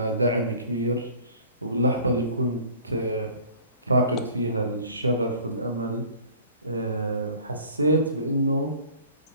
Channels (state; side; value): inverted; both; correlation -0.48